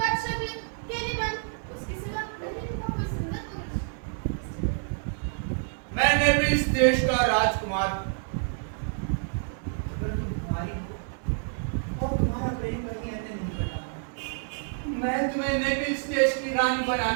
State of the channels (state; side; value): silent; left; digital silence